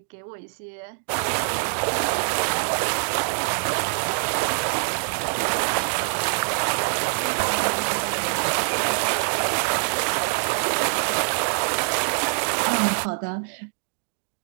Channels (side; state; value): left; silent; digital silence